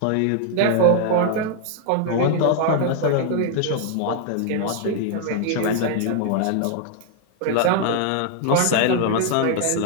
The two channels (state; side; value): different; both; correlation 0.00